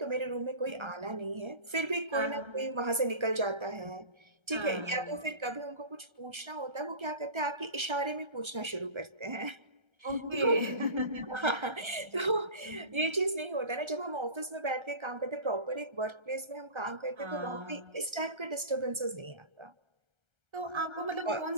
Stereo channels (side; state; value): left; late; 1.3 ms